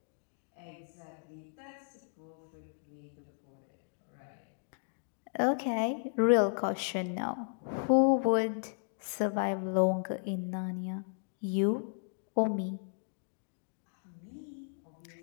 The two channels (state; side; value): silent; right; digital silence